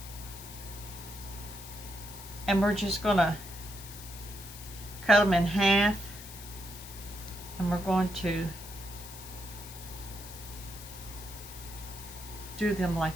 and we're just going to cut them in half, and we're going to do them like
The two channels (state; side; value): noise; left; hiss, 14 dB below the sound